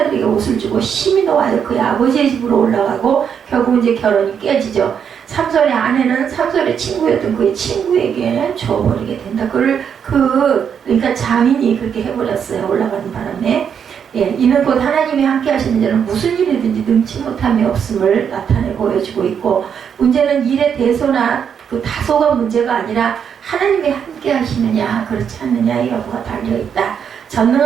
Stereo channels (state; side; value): quieter; left; 7.6 dB